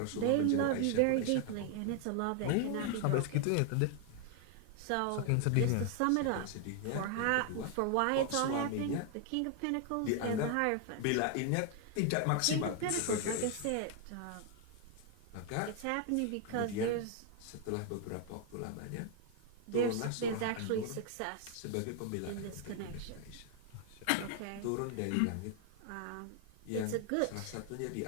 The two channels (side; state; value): both; different; correlation 0.00